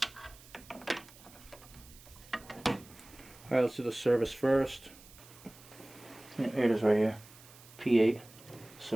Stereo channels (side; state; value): right; noise; hiss, 21 dB below the sound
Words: Alright, let's do the service first. Here it is right here. P8